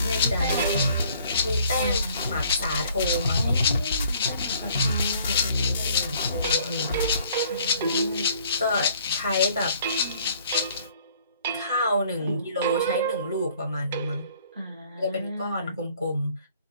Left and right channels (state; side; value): inverted; both; correlation -0.58